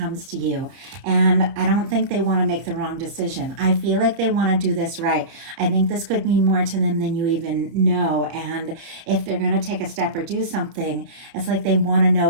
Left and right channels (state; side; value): late; left; 30 ms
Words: to you. And I don't think they want to make the wrong decision. I feel like they want to do this right. I think this could mean more to them than you even know. And if they're going to take a step or do something, it's like they want to know